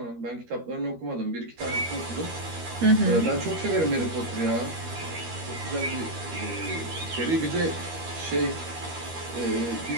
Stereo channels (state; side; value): late; left; 13 ms